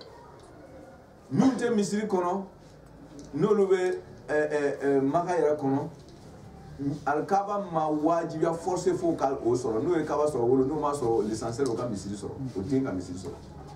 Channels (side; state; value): both; identical; correlation 1.00